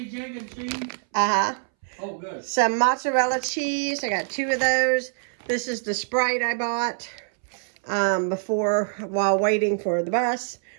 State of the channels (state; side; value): silent; left; 62 dB below the other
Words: egg, and cheese? Uh-huh. Oh, good. Some mozzarella cheese. I got 2 of those. This is the Sprite I bought while waiting for the bus.